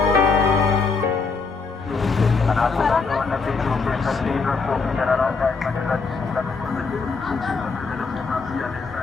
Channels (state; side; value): quieter; right; 4.6 dB